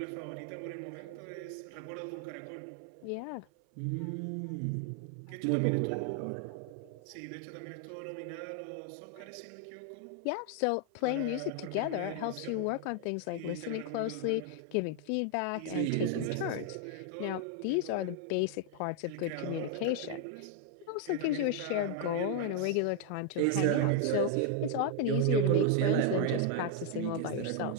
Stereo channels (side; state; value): both; different; correlation 0.00